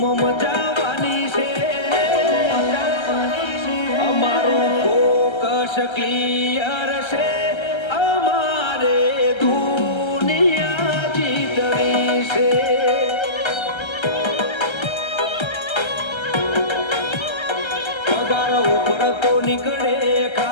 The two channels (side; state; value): right; late; 1.3 ms